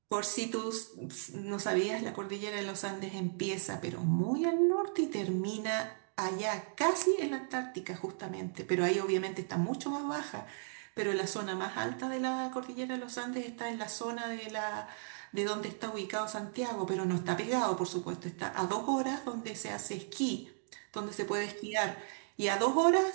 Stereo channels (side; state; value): left; silent; digital silence